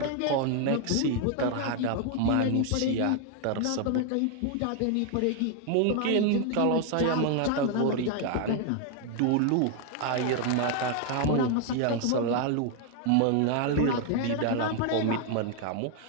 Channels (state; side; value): different; both; correlation 0.01